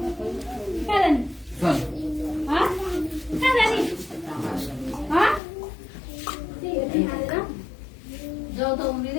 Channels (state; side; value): drops out; right; at 5.4 s